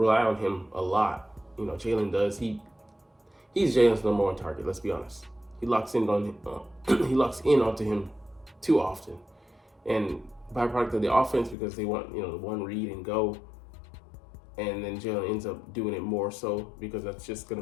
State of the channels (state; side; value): drops out; right; at 11.6 s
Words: on him a lot. Jalen does. He's Jalen's number 1 target. Let's be honest. He locks in onto him too often, and byproduct of the offense because they want the one read and go. And then Jalen ends up doing it more so because that's just going